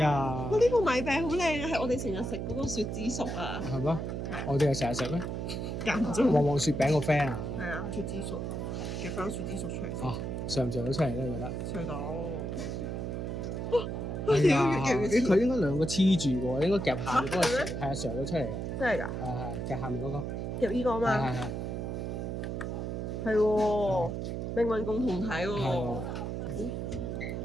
我呢個米餅好靚啊，係我哋成日食嗰個雪之熟啊。係咩？我哋係成日食咩？間唔中。旺旺雪餅個 friend 啊！係啊，雪之熟，夾翻雪之熟出嚟先。哦，上唔上到出嚟咧？你覺得？上到。哎呀！佢應該兩個黐住喎，應該夾下面嗰個上，係啊，上到出嚟嘅。真係㗎？係夾下面嗰個。夾呢個啊嘛。係喎，命運共同體喎。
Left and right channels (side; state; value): right; noise; hum, 3 dB below the sound